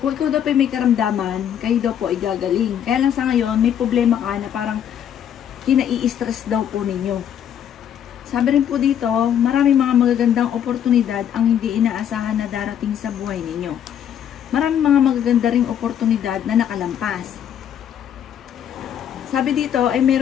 ikaw daw po may karamdaman, kayo daw po ay gagaling. Kaya lang sa ngayon, may problema ka na parang kinai-stress daw po ninyo. Sabi rin po dito, maraming mga magagandang oportunidad ang hindi inaasahan na darating sa buhay ninyo. Maraming mga magaganda ring oportunidad na nakalampas. Sabi dito ay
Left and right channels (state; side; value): quieter; right; 9.5 dB